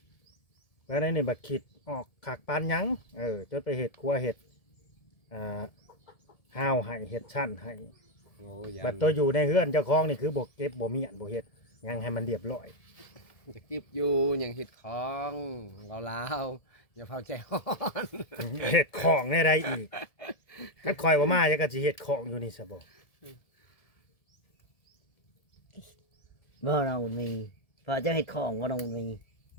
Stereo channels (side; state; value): right; late; 1.7 ms